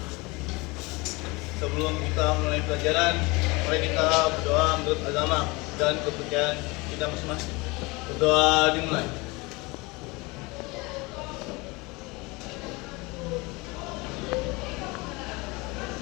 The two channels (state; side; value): quieter; right; 24.9 dB